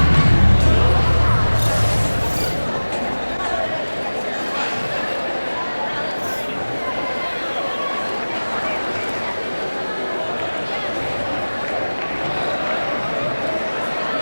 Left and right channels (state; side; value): inverted; both; correlation -1.00